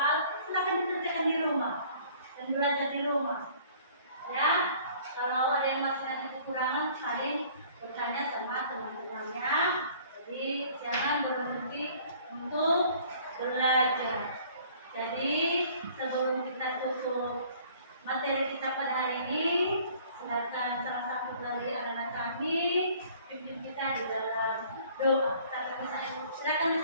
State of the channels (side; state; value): both; inverted; correlation -0.54